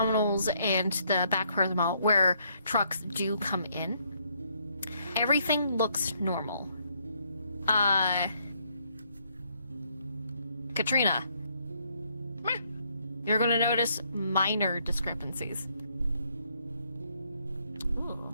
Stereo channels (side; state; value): both; inverted; correlation -0.71